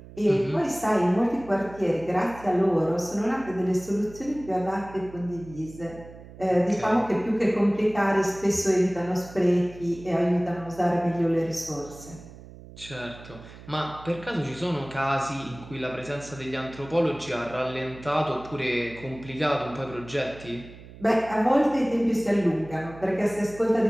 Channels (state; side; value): noise; right; hum, 18 dB below the sound